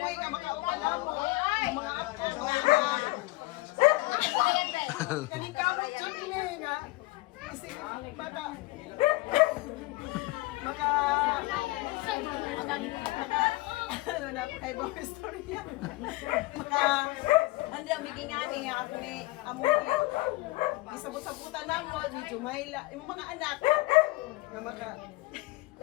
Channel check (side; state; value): right; quieter; 21.2 dB